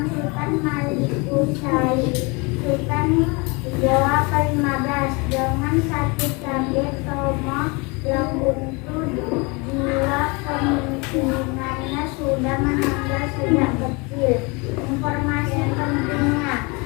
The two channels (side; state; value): right; quieter; 28.5 dB